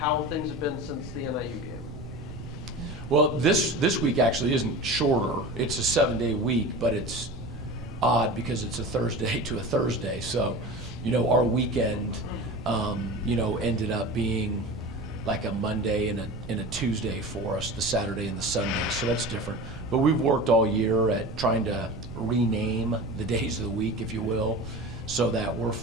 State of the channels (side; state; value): right; noise; rumble, 12 dB below the sound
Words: things have been since the NIU game. Well, this week actually isn't shorter. It's a 7-day week, but it's odd because it's a Thursday to a Thursday. So, our weekend, ended up being like a Monday and a Tuesday for us, the Saturday and the Sunday. So that's different. But we've worked all year at trying to rename the days of the week, if you will, so that we're